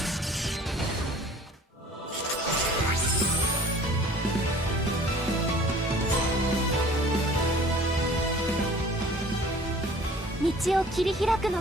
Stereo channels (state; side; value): normal; both; correlation 0.49